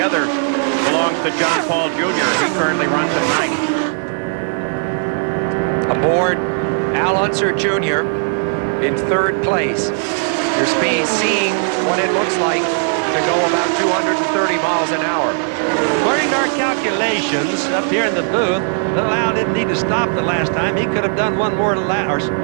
other belongs to John Paul Jr. He currently runs at 9th. Aboard Al Unser Jr. in 3rd place. You're seeing what it looks like to go about 230 miles an hour. According to our calculations up here in the booth, Little Al didn't need to stop the last time. He could have done one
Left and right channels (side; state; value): left; silent; 60 dB below the other